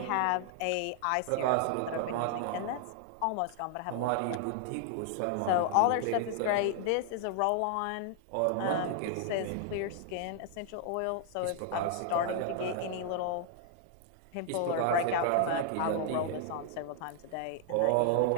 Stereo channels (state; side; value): different; both; correlation 0.00